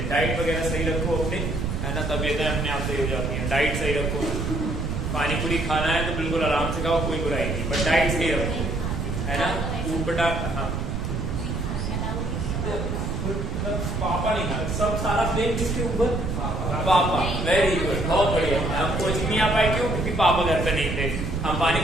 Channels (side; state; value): right; noise; rumble, 2 dB below the sound